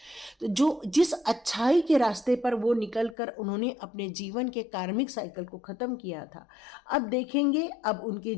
तो जो जिस अच्छाई के रास्ते पर वो निकल कर उन्होंने अपने जीवन के कार्मिक साइकिल को ख़त्म किया था, अब देखेंगे अब उनके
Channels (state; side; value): drops out; right; at 3.2 s